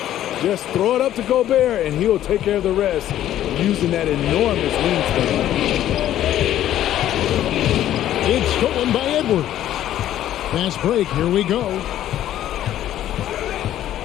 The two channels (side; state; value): right; quieter; 12.3 dB